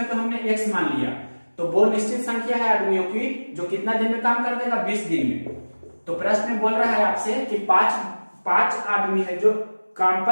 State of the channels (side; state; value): both; inverted; correlation -1.00